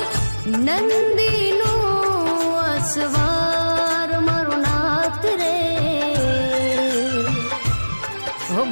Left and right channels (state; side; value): inverted; both; correlation -1.00